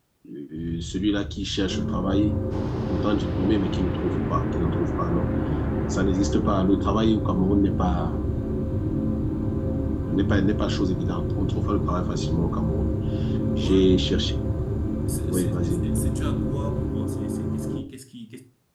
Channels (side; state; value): both; identical; correlation 1.00